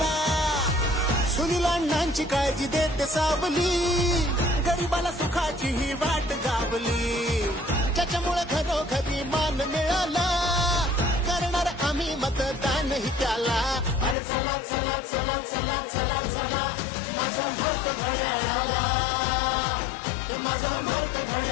सुनील अण्णांची काळजी देते सावली, गरिबाला सुखाची ही वाट गावली. ज्याच्यामुळे घरोघरी मान मिळाला, करणार आम्ही मतदानही त्याला. अरे चला चला चला चला चला चला, माझं मत घड्याळाला, माझं मत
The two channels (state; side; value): drops out; right; at 14.2 s